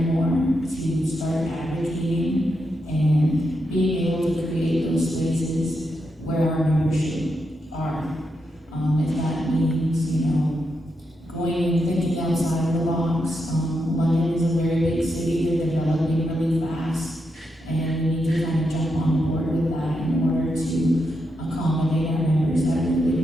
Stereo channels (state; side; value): normal; both; correlation 0.84